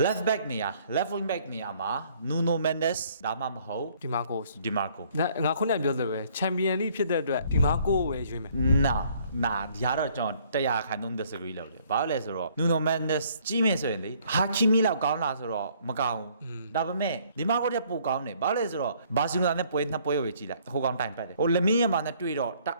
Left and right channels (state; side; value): inverted; both; correlation -0.62